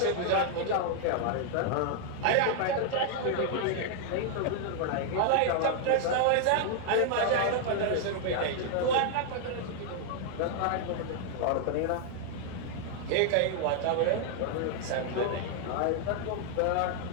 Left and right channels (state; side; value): different; both; correlation 0.00